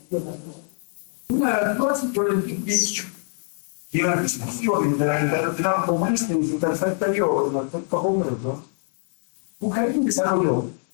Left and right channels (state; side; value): silent; right; 57 dB below the other